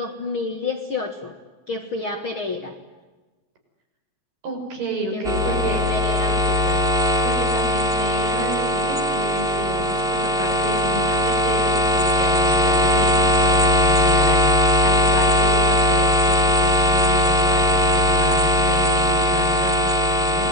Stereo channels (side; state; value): both; normal; correlation 0.14